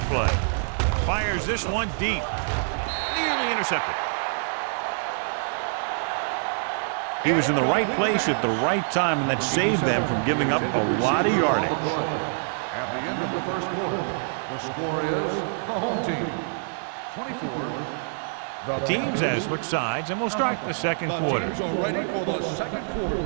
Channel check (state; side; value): silent; left; digital silence